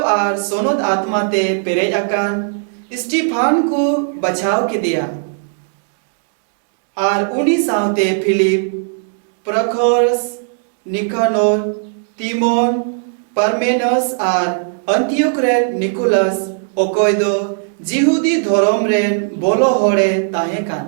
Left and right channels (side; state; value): left; silent; digital silence